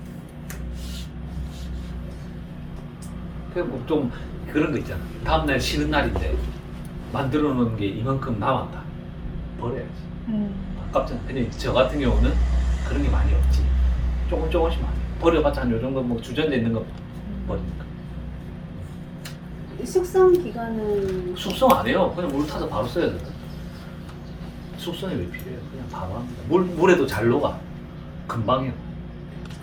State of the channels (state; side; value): identical; both; correlation 1.00